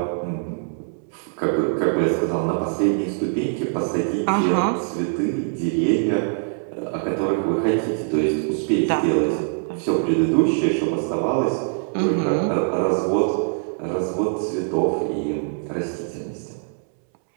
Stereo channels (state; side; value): silent; left; 63 dB below the other